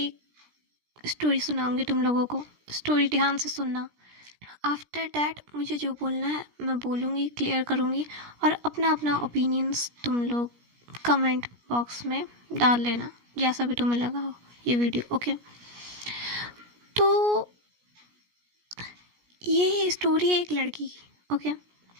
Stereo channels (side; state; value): left; late; 17 ms